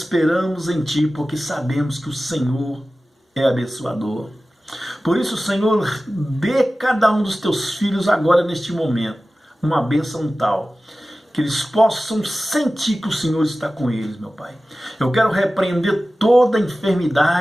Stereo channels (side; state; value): both; normal; correlation 0.96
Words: em Ti, porque sabemos que o Senhor é abençoador. Por isso, Senhor, dê cada um dos Teus filhos agora, neste momento, uma bênção tal, que eles possam sentir que o Senhor está com eles, meu Pai. Eu quero repreender toda